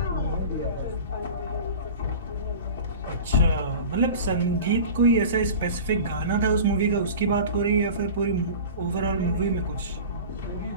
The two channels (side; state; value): both; inverted; correlation -0.36